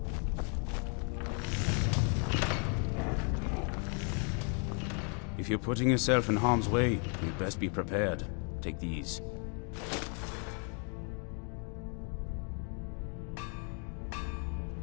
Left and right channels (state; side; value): quieter; right; 39.3 dB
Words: If you're putting yourself in harm's way, you'd best be prepared. Take these.